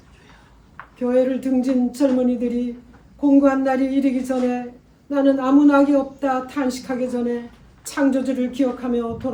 교회를 등진 젊은이들이 공고한 날이 이르기 전에 나는 아무 낙이 없다 탄식하기 전에 창조주를 기억하며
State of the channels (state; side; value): identical; both; correlation 1.00